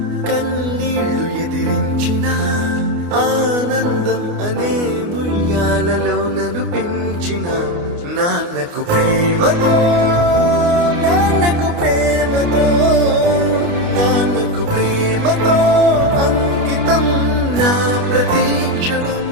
కన్నీళ్లు ఎదిరించినా ఆనందం అనే ఉయ్యాలలో నన్ను పెంచిన నాన్నకు ప్రేమతో నాన్నకు ప్రేమతో నాన్నకు ప్రేమతో అంకితం నా ప్రతీక్షణం.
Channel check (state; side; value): late; left; 29 ms